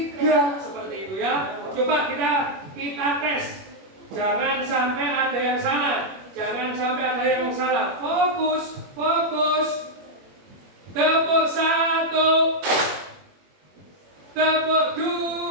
seperti itu ya. Coba kita tes. Jangan sampai ada yang salah. Jangan sampai ada yang salah. Fokus, fokus. Tepuk 1, tepuk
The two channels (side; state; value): left; late; 21 ms